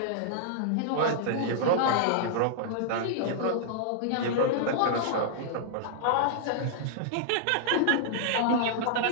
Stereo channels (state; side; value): different; both; correlation -0.01